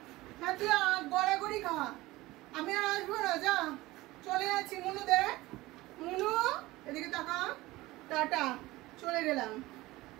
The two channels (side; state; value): left; quieter; 19.1 dB